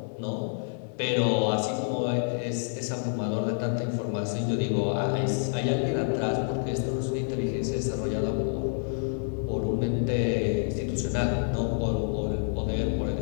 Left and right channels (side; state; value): right; silent; digital silence